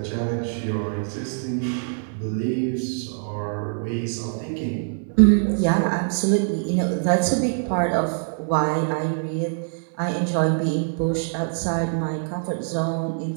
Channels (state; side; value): silent; left; 59 dB below the other